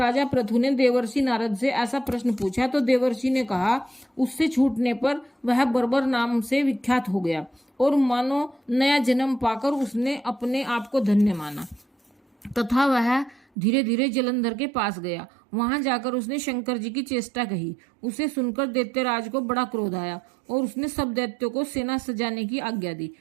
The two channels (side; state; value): left; drops out; at 13.5 s